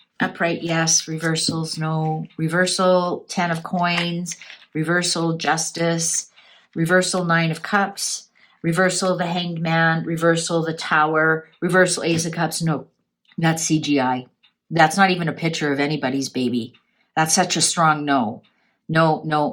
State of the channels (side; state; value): both; identical; correlation 1.00